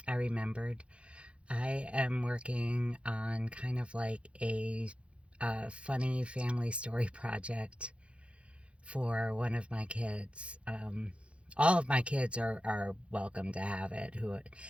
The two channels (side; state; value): left; late; 0.060 ms